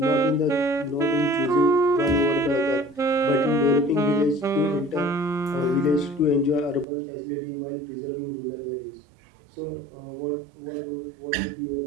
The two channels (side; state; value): left; drops out; at 6.9 s